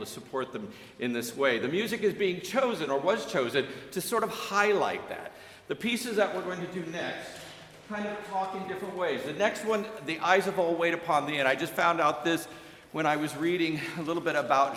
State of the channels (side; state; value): both; identical; correlation 1.00